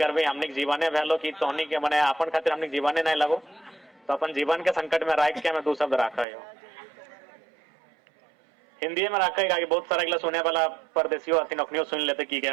हमने जीवने भलो कि तोहनी के मने अपन खातिर हमने जीवने नहीं लगो, तो अपन जीवन के संकट में राख के हमें दो शब्द राखा है। हिंदी में रखा है, बहुत सारा अगला सुने वाला परदेशियों आती नौकरियों सुन लेते की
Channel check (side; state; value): left; drops out; at 6.2 s